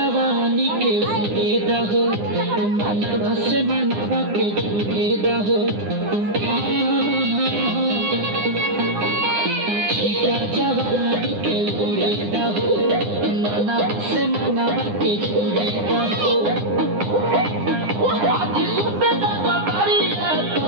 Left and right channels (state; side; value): late; left; 9.8 ms